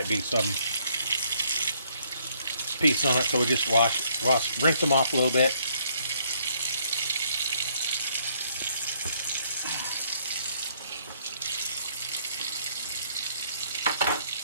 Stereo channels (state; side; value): inverted; both; correlation -0.67